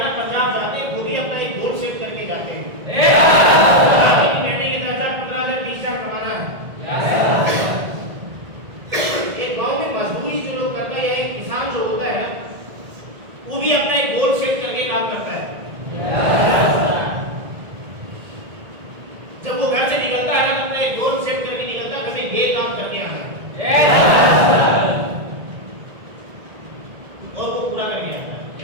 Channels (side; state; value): left; late; 1.7 ms